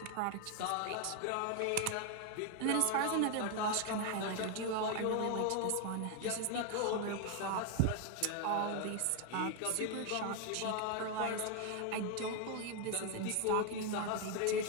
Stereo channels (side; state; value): both; different; correlation 0.01